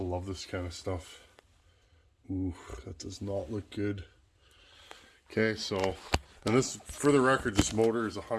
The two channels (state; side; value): identical; both; correlation 1.00